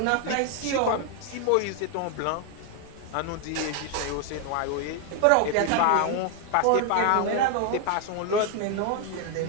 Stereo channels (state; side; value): different; both; correlation 0.00